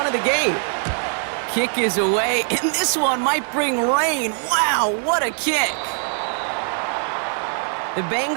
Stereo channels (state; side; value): silent; left; 55 dB below the other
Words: of the game. Kick is away, and this one might bring rain. Wow, what a kick. The